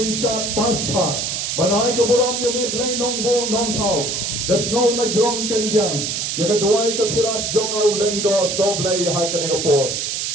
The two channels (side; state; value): right; noise; hiss, 2 dB below the sound